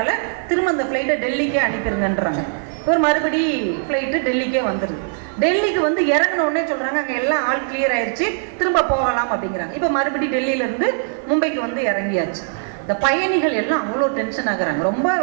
திரும்ப அந்த ஃப்ளைட்டை டெல்லிக்கே அனுப்பிடுங்கன்றாங்க. ஒரு மறுபடி ஃப்ளைட்டு டெல்லிக்கே வந்துருது. டெல்லிக்கு வந்து இறங்கின உடனே சொல்றாங்க அங்கே எல்லாம் ஆல் கிளியர் ஆயிடுச்சு, திரும்ப போகலாம் அப்படிங்கிறாங்க. இப்போ மறுபடி டெல்லியில இருந்து மும்பைக்கு வந்து இறங்கியாச்சு. இந்த பயணிகள் எல்லாம் அவ்வளோ டென்ஷன் ஆகுறாங்க, ரொம்ப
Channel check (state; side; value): silent; left; 66 dB below the other